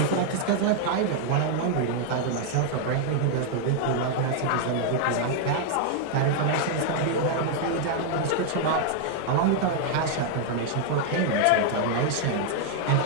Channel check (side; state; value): both; different; correlation 0.00